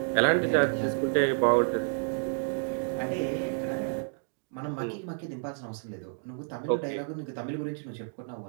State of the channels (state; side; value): silent; left; digital silence